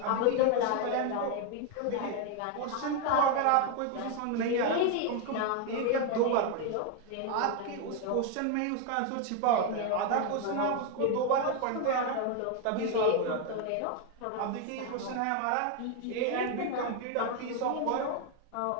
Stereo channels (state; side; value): different; both; correlation 0.01